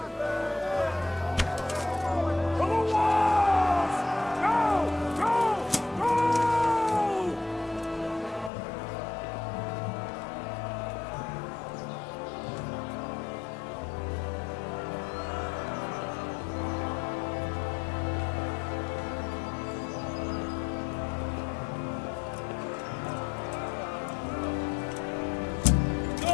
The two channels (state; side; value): drops out; right; at 8.5 s